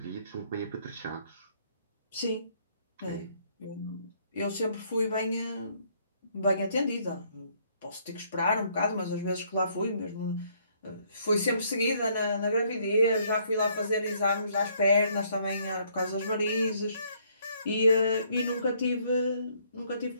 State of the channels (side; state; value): both; inverted; correlation -0.67